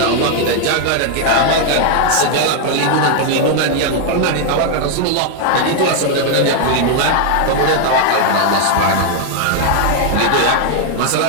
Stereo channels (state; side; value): different; both; correlation 0.00